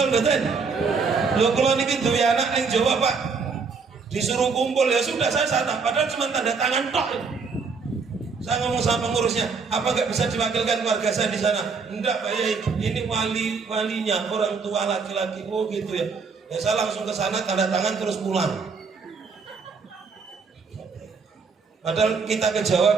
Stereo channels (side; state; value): left; quieter; 5.0 dB